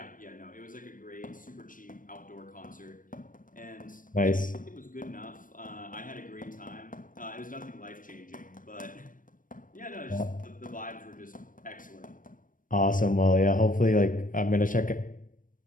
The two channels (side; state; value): right; late; 0.39 ms